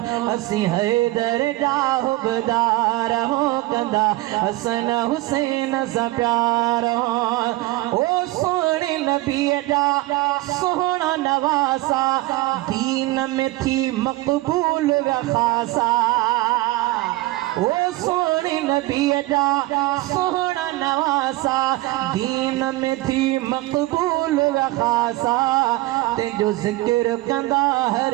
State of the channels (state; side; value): quieter; left; 19.1 dB